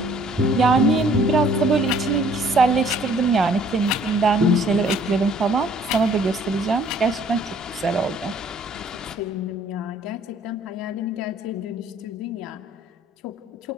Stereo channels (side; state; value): both; normal; correlation 0.59